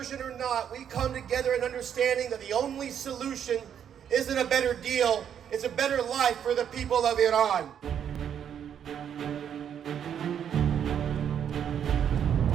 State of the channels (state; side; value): quieter; left; 8.8 dB